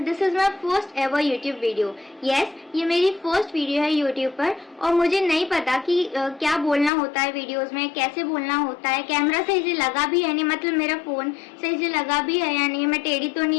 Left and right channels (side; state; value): right; drops out; at 6.9 s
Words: this is my first ever YouTube video. Yes, ये मेरी फर्स्ट वीडियो है YouTube पर और मुझे नहीं पता कि क्या बोलना होता है वीडियोस में, कैसे बोलना होता है, कैमरा सही से लगा भी है नहीं, मतलब मेरा फोन सही से लगा भी है या नहीं, मैं टेढ़ी तो